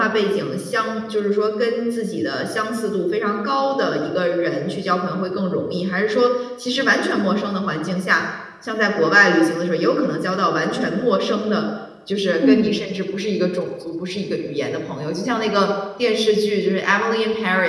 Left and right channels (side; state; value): both; identical; correlation 1.00